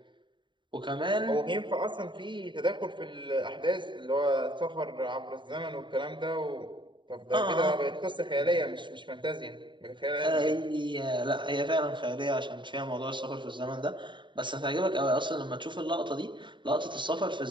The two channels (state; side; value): late; left; 0.23 ms